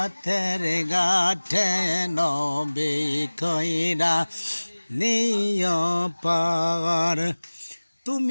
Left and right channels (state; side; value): inverted; both; correlation -1.00